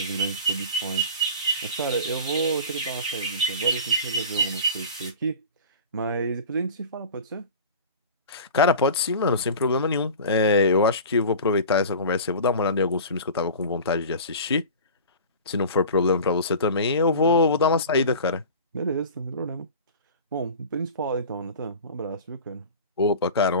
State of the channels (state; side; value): inverted; both; correlation -0.37